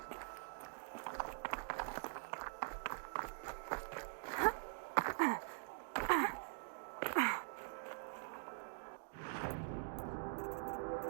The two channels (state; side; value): silent; left; digital silence